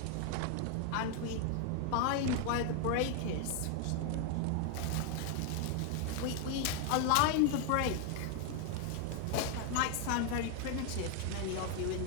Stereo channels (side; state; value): both; different; correlation 0.00